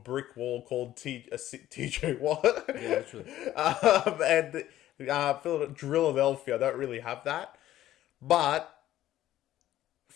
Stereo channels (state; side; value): quieter; right; 13.5 dB